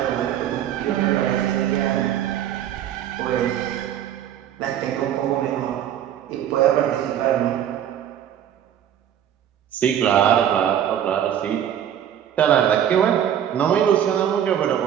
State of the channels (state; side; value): quieter; left; 10.2 dB